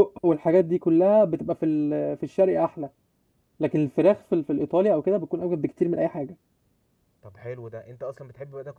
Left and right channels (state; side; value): identical; both; correlation 1.00